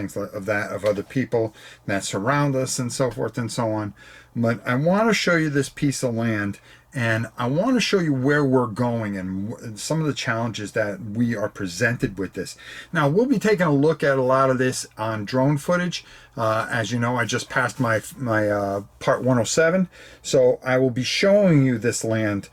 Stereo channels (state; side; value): identical; both; correlation 1.00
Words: of other people that surround us and so forth and so on. But I want to show you this piece of land, and I want to show you where we're going and some of the challenges that we are presented with this. Now, we'll be taking a look at a lot of this on drone footage. As you know, I just passed my part 107, so I will be showing you this land